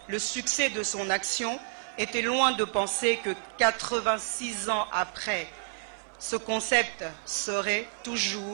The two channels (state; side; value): silent; left; 55 dB below the other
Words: le succès de son action, était loin de penser que 86 ans après, ce concept serait